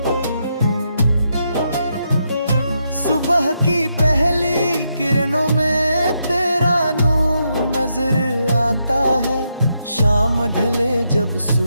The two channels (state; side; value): inverted; both; correlation -0.81